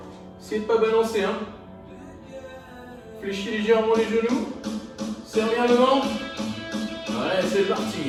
Essayez de ne pas balancer. Hein. Fléchis légèrement les genoux. Serre bien le ventre. Ouais, c'est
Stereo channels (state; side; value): identical; both; correlation 1.00